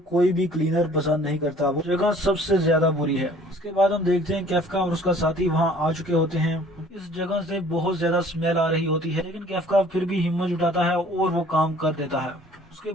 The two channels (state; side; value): normal; both; correlation 0.53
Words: कोई भी क्लीनर पसंद नहीं करता, वो जगह सबसे ज्यादा बुरी है। इसके बाद हम देखते हैं कैफका और उसका साथी वहां आ चुके होते हैं। इस जगह से बहुत ज्यादा स्मेल आ रही होती है लेकिन कैफका फिर भी हिम्मत जुटाता है और वो काम कर देता है। उसके